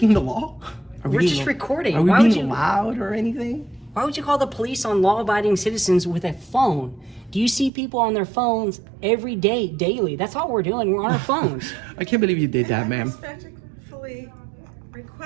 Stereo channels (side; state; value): left; drops out; at 7.7 s